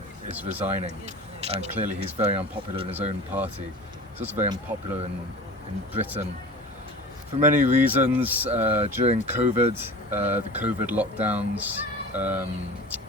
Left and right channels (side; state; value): both; normal; correlation 0.36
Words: is resigning, and clearly he's very unpopular in his own party. He's also very unpopular in Britain for many reasons. During COVID, the COVID lockdowns,